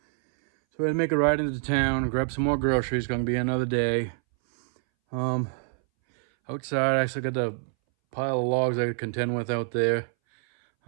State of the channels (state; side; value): silent; left; 61 dB below the other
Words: So I had to make a ride into town, grab some more groceries. Gonna be another day. Outside, I still got the pile of logs I could contend with out there.